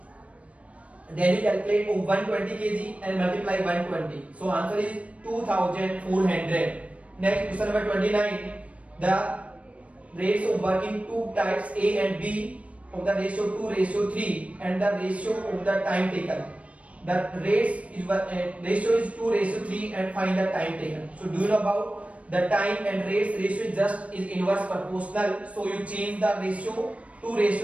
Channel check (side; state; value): left; late; 0.065 ms